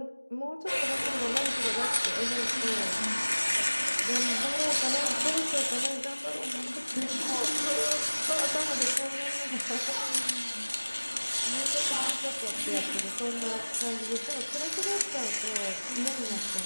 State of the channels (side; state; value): both; inverted; correlation -1.00